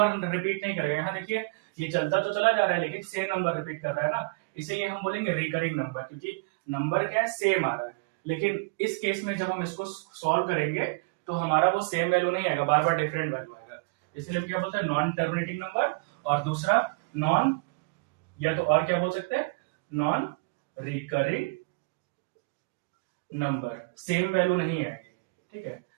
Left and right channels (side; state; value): left; quieter; 29.0 dB